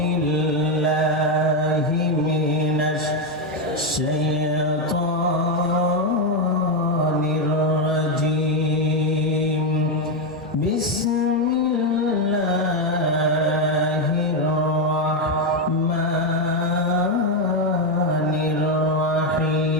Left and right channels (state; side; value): normal; both; correlation 0.06